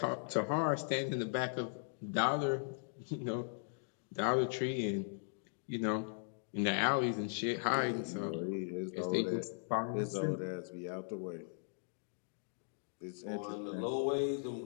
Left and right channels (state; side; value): silent; right; digital silence